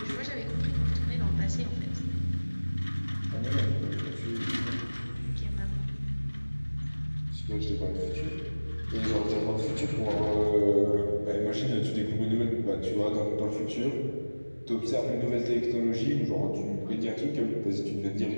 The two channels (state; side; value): inverted; both; correlation -1.00